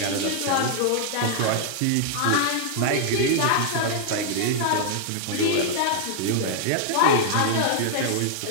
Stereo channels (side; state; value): both; different; correlation -0.01